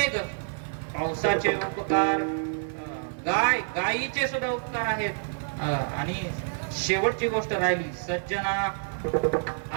पावसाचे उपकार, गायीचे सुद्धा उपकार आहेत. आणि शेवटची गोष्ट राहिली सज्जना.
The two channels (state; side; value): silent; left; digital silence